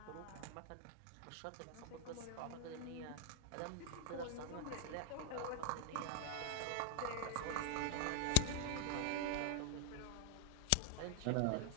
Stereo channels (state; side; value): different; both; correlation 0.00